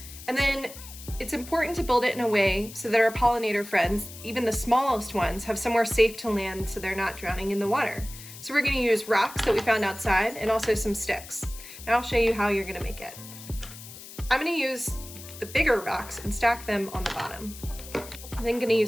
and then it's important to build it in a way so that our pollinator friends, even the smallest ones, have somewhere safe to land so they're not drowning in the water. So we're going to use rocks that we found outside and also some sticks. Now I'll show you how you're going to make it. I'm going to use the bigger rocks and stack them on the bottom. I'm then going to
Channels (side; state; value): left; noise; hiss, 15 dB below the sound